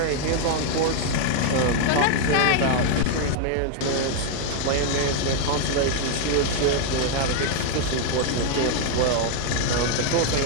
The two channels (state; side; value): different; both; correlation 0.00